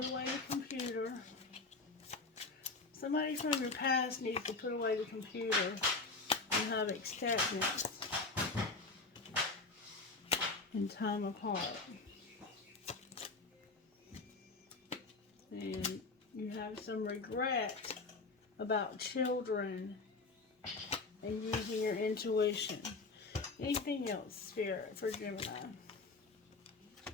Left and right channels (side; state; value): right; quieter; 3.8 dB